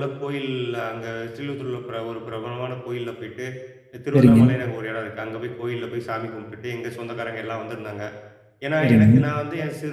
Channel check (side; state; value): both; identical; correlation 1.00